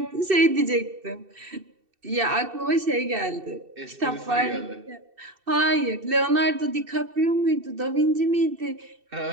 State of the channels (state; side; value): late; left; 2.7 ms